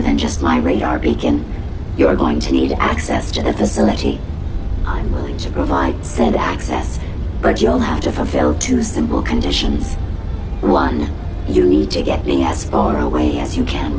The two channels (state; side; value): identical; both; correlation 1.00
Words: than just my radar beacon. You're going to need access to the facility. I'm willing to provide said access, but you'll have to fulfill 2 simple conditions. 1, you need to get me as far away as you can